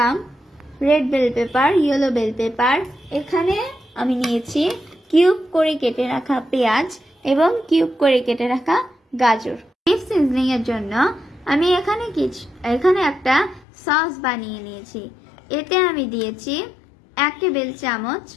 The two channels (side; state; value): right; drops out; at 13.7 s